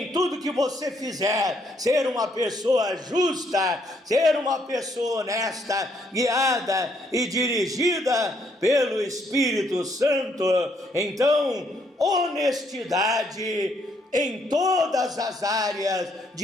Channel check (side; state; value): both; normal; correlation 0.71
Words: tudo que você fizer, ser uma pessoa justa, ser uma pessoa honesta, guiada e dirigida pelo Espírito Santo. Então, honestidade em todas as áreas